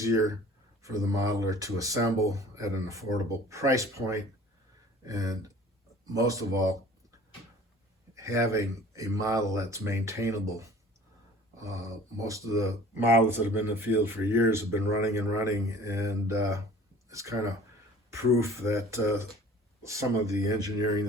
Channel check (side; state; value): both; normal; correlation 0.48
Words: for the modeler to assemble at an affordable price point, and most of all, having a model that's maintainable. Most of the models that have been in the field for years have been running, and it's kind of proof that some of the engineering